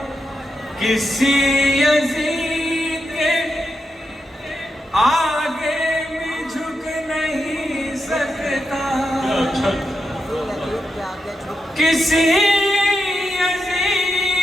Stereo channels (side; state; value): both; normal; correlation 0.86